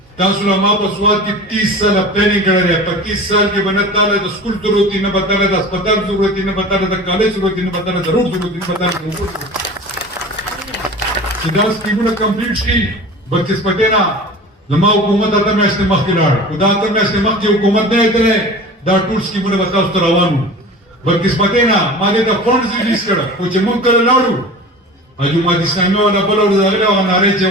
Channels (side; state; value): both; normal; correlation 0.37